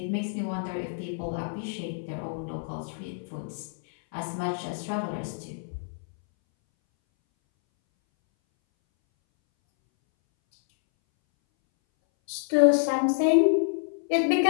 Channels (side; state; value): right; silent; 60 dB below the other